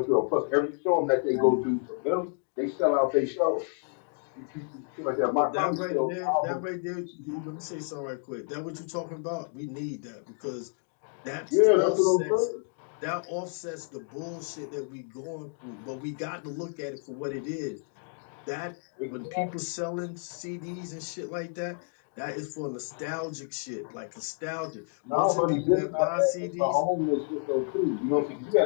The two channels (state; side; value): silent; right; 57 dB below the other